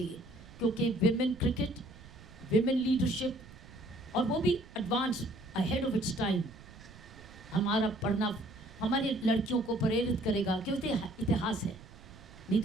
क्योंकि विमेन क्रिकेट, विमेन लीडरशिप, और वो भी advance, ahead of its time, हमारा पढ़ना हमारी लड़कियों को प्रेरित करेगा कि इतिहास है, नहीं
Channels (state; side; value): noise; right; rumble, 19 dB below the sound